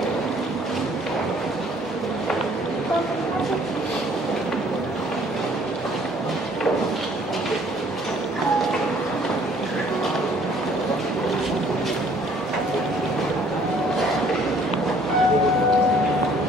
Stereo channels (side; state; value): both; normal; correlation 0.59